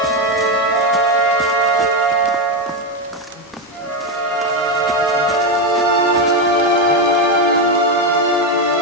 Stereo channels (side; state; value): both; normal; correlation 0.07